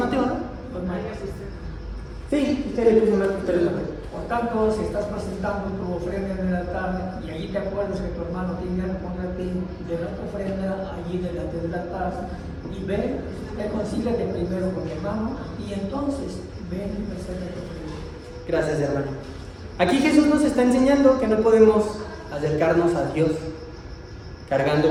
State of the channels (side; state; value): both; identical; correlation 1.00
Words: no? Pues Marcos. Sí, usted le puso Marcos, pero es Mateo. Por tanto, si estás presentando tu ofrenda en el altar y allí te acuerdas que tu hermano tiene algo contra ti, de la ofrenda allí delante del altar y ve, reconcíliate primero con tu hermano y entonces ven y presenta tu ofrenda. Gracias, hermano. Aquí Jesús nos está enseñando que no podemos acercarnos a Dios